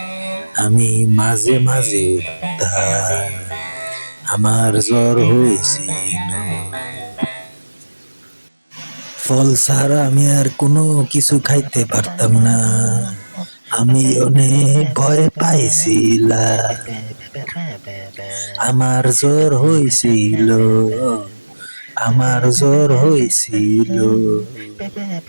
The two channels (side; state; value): both; inverted; correlation -1.00